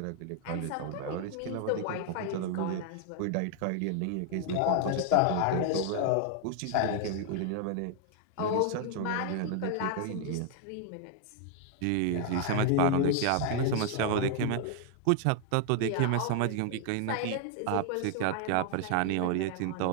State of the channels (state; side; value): different; both; correlation 0.00